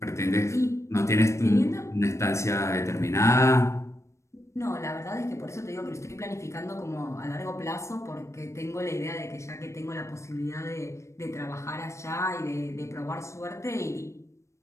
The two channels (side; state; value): right; late; 0.14 ms